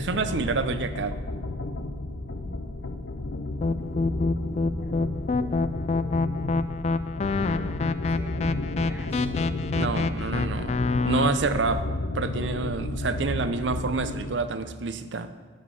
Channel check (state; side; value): normal; both; correlation 0.50